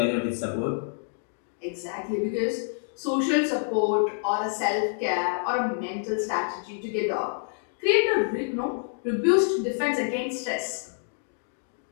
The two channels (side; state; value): right; silent; digital silence